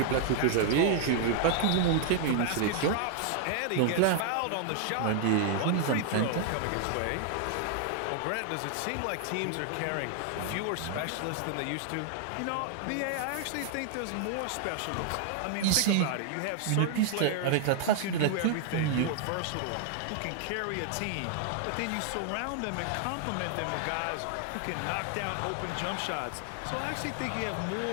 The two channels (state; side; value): different; both; correlation 0.00